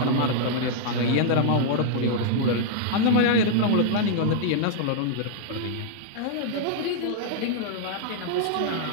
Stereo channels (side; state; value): both; different; correlation -0.01